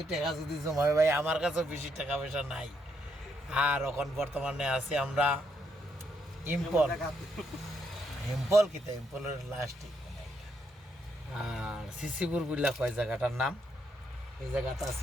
টাকা যদি জমাই ভাই, আমার কাছেও বেশি টাকা পয়সা নাই। আর এখন বর্তমানে আছি আমরা ইম্পল কিতা ইম্পলের লাস্টিক। আর সিসিপুর বুঝলা কয় জায়গাটার নাম, এই জায়গাটা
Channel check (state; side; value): normal; both; correlation 0.76